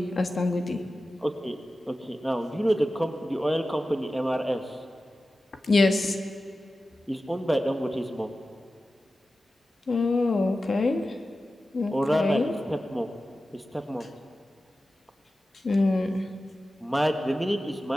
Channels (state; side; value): normal; both; correlation 0.94